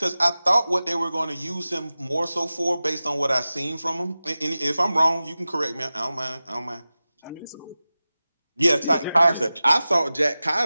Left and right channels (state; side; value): inverted; both; correlation -0.96